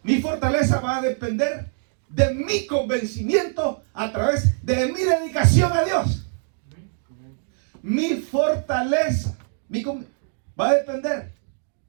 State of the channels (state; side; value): silent; left; digital silence